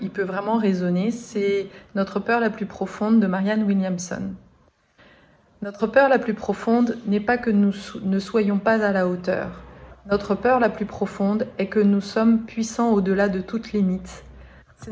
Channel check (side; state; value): both; identical; correlation 1.00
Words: peut vraiment résonner. C'est Notre peur la plus profonde de Marianne Williamson. Notre peur la plus profonde n'est pas que nous ne soyons pas à la hauteur. Notre peur la plus profonde est que nous sommes puissants au-delà de toute limite.